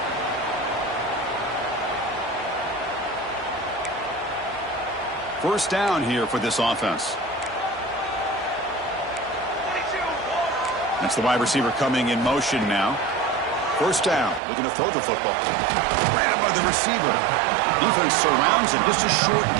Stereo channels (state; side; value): drops out; left; at 14.4 s